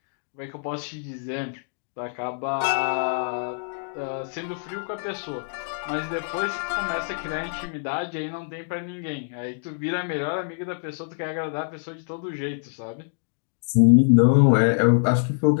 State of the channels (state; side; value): silent; right; digital silence